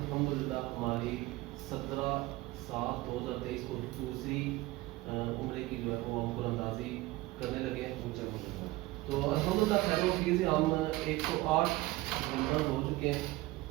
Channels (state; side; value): quieter; left; 19.2 dB